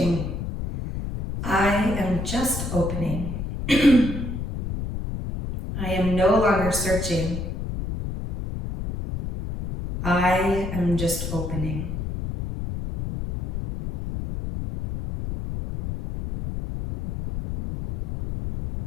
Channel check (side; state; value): left; noise; rumble, 5 dB below the sound